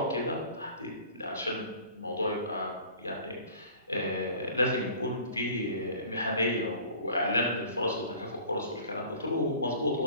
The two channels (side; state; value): both; inverted; correlation -0.46